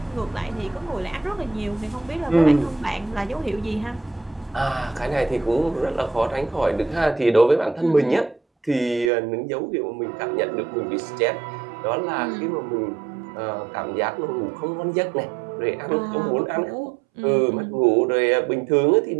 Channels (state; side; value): drops out; left; at 9.1 s